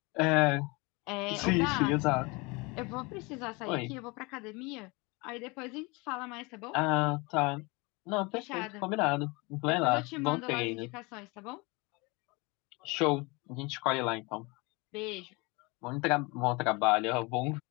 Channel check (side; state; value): right; quieter; 26.7 dB